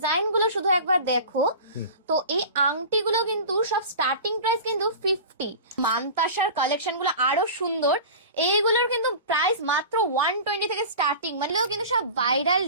গুলো শুধু একবার দেখো। তো এই আংটিগুলো কিন্তু সব স্টার্টিং প্রাইস কিন্তু 50। মানতাসার কালেকশন গুলো আরো সুন্দর। এইগুলোর কিন্তু প্রাইস মাত্র 120 থেকে স্টার্টিং, মানে কিন্তু সব ভাইরাল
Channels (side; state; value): both; inverted; correlation -0.35